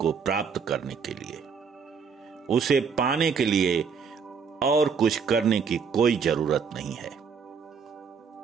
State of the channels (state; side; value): quieter; left; 6.0 dB